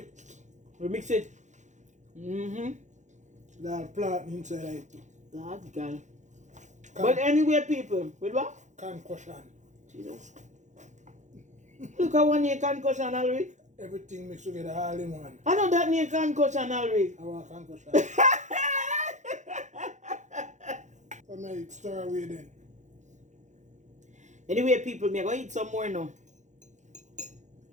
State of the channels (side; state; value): left; late; 0.35 ms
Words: We mix it. That plant inside it too. That girl. But anyway people, with what? Concussion. Jesus. Look at one year concussion already. Everything mixed together all in one. I know that near concussion already. I want concussion. So may stir away then. Anyway people, me go eat some more now.